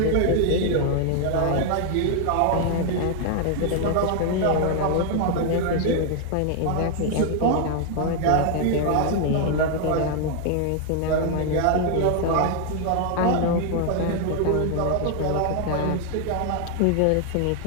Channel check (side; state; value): both; different; correlation 0.00